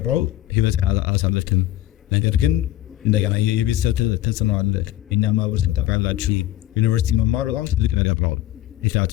ህይወት አላሳለፍክም። ነገር ግን እንደገና የቤተሰብ ተጽዕኖ አለ። እኛ ማህበረሰብ ታውቃላችሁ፣ ዩኒቨርሲቲ መማር በጣም ትልቅ ነገር ነው።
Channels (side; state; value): right; quieter; 14.7 dB